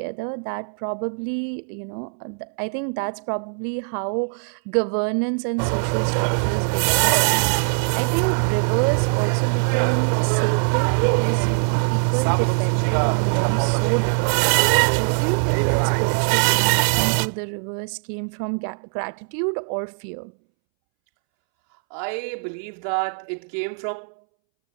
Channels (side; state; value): left; silent; 64 dB below the other